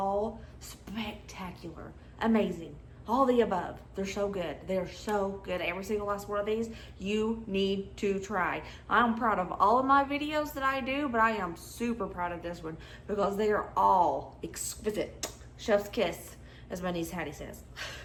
spectacular, amazing, all the above. They're so good. They're so good. Every single last one of these you need to try. I'm proud of all of my videos that I do, but I am super proud of this one because they are all exquisite. Chef's kiss, as my niece Hattie says.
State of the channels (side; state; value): both; identical; correlation 1.00